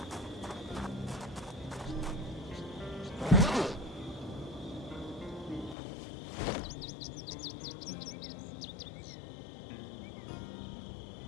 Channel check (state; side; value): drops out; right; at 5.8 s